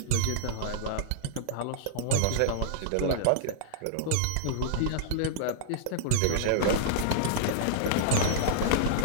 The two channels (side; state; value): both; different; correlation -0.01